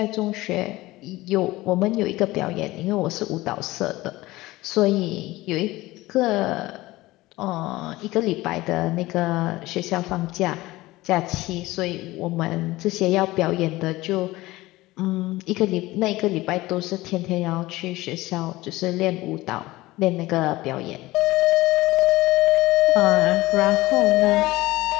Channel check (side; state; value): right; quieter; 18.8 dB